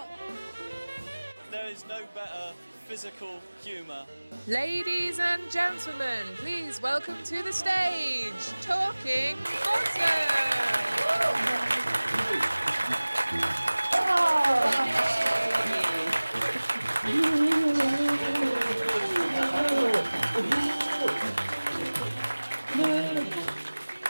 There is no better physical humour. Ladies and gentlemen, please welcome to the stage, Talking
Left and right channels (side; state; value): both; inverted; correlation -1.00